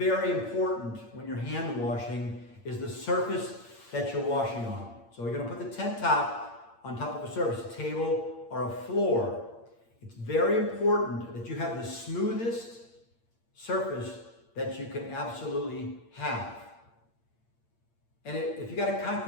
important when you're hand washing is the surface that you're washing on. So you're going to put the tent top on top of a surface, a table or a floor. It's very important that you have the smoothest surface that you can absolutely have. And if you got a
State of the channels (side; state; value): right; late; 8.7 ms